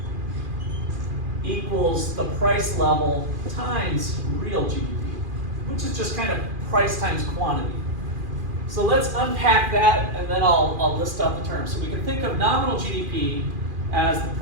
equals the price level times real GDP, which is just kind of price times quantity. So let's unpack that, and then I'll list out the terms. So we can think of nominal GDP as the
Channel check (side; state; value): left; late; 2.4 ms